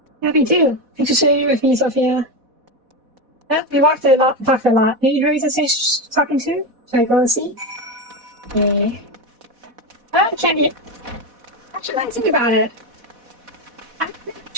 Happy too. Thanks for sharing with me, Sophia. Yeah, we walked a lot, talked a lot. Maybe Hurry's the talking to? Should I go and see? Okay. Candy. Actually, I think about it. I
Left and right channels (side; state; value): left; late; 4.1 ms